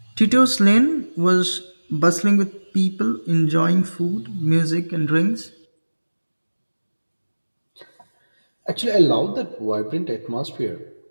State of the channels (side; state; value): both; inverted; correlation -1.00